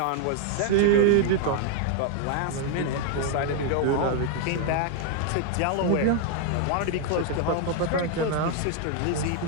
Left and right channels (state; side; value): different; both; correlation 0.00